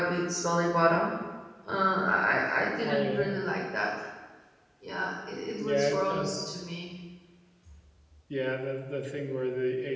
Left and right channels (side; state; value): both; identical; correlation 1.00